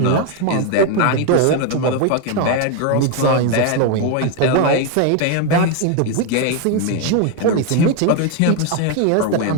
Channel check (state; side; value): different; both; correlation 0.01